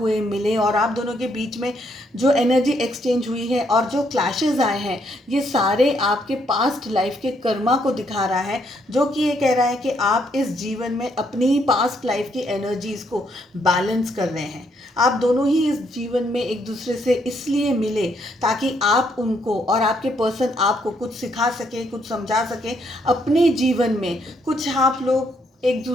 मिले और आप दोनों के बीच में जो एनर्जी एक्सचेंज हुई है और जो क्लैशेस आए हैं, ये सारे आपके पास्ट लाइफ के कर्मा को दिखा रहा है, जो कि ये कह रहा है कि आप इस जीवन में अपनी पास्ट लाइफ की एनर्जीज को बैलेंस कर रहे हैं। आप दोनों ही इस जीवन में एक दूसरे से इसलिए मिले ताकि आप उनको और आपके पर्सन आपको कुछ सिखा सके, कुछ समझा सके, अपने जीवन में कुछ आप लोग एक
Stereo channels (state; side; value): normal; both; correlation 0.73